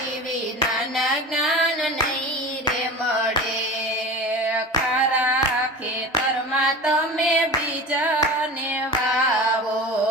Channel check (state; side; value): normal; both; correlation 0.33